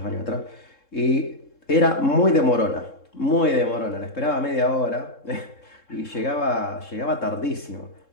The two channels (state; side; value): late; right; 3.7 ms